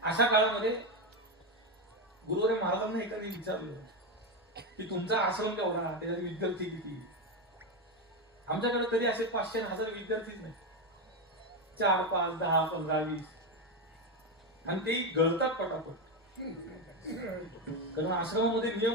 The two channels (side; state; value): both; normal; correlation 0.11